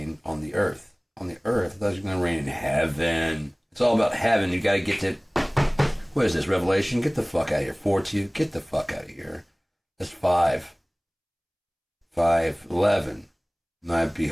on the earth. On the earth? I thought you were going to reign in heaven. It's all about heaven. You got to get to, what is this, Revelation? Get the fuck out of here. 4:2, get the fuck out of here. That's 5. 5:11. And I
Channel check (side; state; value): both; identical; correlation 1.00